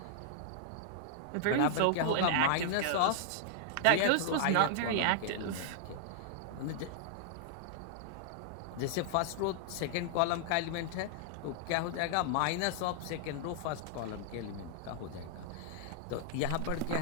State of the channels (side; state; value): both; different; correlation -0.01